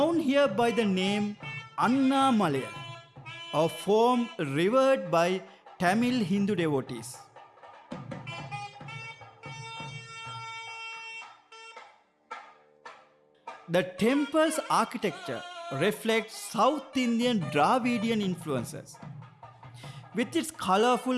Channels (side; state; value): both; identical; correlation 1.00